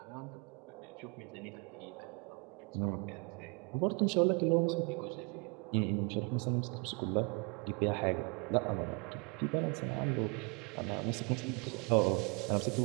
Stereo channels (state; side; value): quieter; left; 32.6 dB